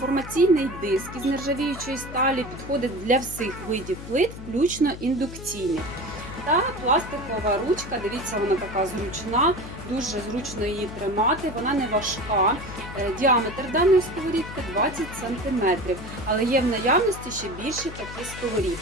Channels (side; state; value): left; noise; hum, 12 dB below the sound